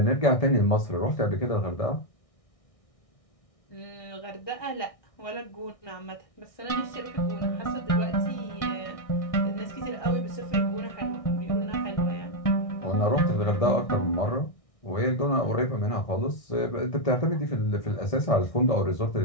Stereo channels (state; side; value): late; right; 1.6 ms